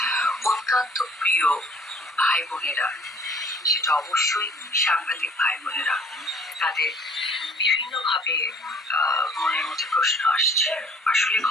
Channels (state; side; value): normal; both; correlation 0.55